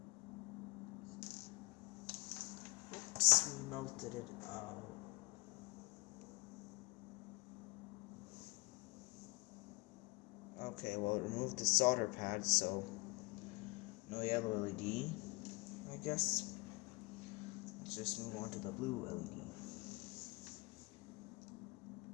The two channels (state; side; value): quieter; right; 25.3 dB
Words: Oops, melted it out. Okay, well, it removed the solder pad, so no yellow LED, I guess. Let's just move on to the blue LED.